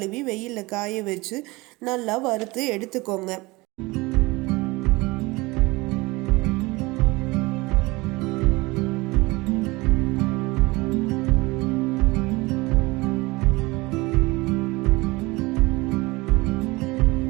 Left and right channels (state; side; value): quieter; left; 22.9 dB